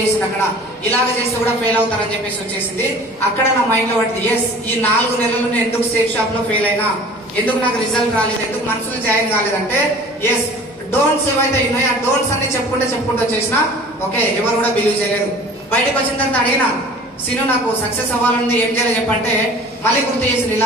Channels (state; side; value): normal; both; correlation 0.45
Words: చేసింది. అక్కడ ఇలాగ చేస్తే కూడా ఫెయిల్ అవుతారని చెప్పేసి వచ్చేసింది. అక్కడ నా మైండ్ లో పడింది, ఎస్ ఈ 4 నెలలు నేను ఎందుకు సేఫ్ షాప్ లో ఫెయిల్ అయినా, ఎందుకు నాకు రిజల్ట్ రాలేదు, ఎందుకు మనసులో జాయిన్ కాలేదంటే ఎస్ డోంట్స్ ఏవైతే ఉన్నాయో ఆ డోంట్స్ అన్ని చెప్పుకుంటూ వచ్చేసిన. ఓకే, ఎవరు కూడా బిలీవ్ చేయలేదు. బయటకు వచ్చిన తర్వాత అడిగినా, సీను నాకు సక్సెస్ అవ్వాలని ఏం చేయాలి చెప్పంటే మళ్ళీ గుర్తు చేసింది.